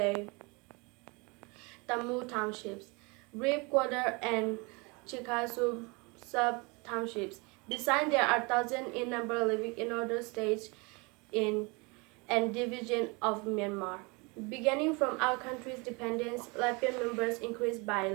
Tamu townships, Reap Quarter, and Chikasu sub-townships. Besides, there are thousands in number living in other states and division of Myanmar. Beginning from our country's independence, Latvian members increased by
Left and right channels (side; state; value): left; quieter; 28.4 dB